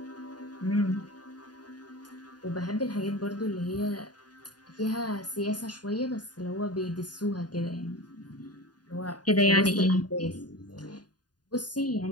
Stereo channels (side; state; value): right; late; 0.70 ms